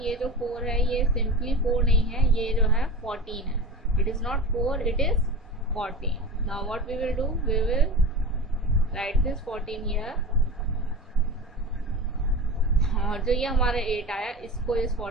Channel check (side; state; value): both; normal; correlation 0.29